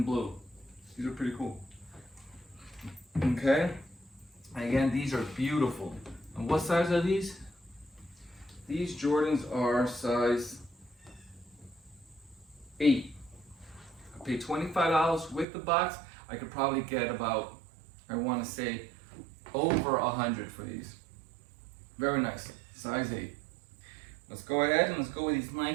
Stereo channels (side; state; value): left; drops out; at 15.5 s